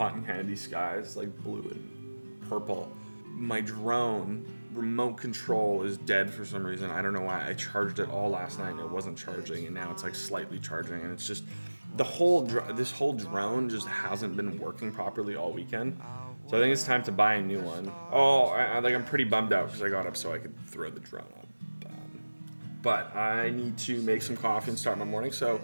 candy skies, like blue and purple. My drone remote control is dead for some reason. I don't know why. I charged it all last night and it wasn't charging, and now it's like slightly charging, and it's just this whole drone just hasn't been working properly all weekend. So I think it's time to buy a new one. I'm pretty bummed out because I got up so I could throw the drone up. But I need to make some coffee and start my morning, so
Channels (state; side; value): inverted; both; correlation -1.00